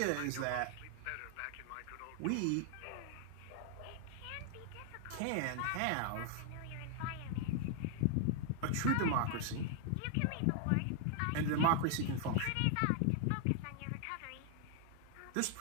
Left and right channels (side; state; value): both; different; correlation 0.00